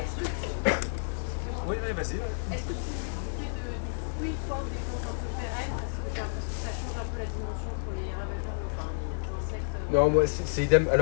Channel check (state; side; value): silent; right; digital silence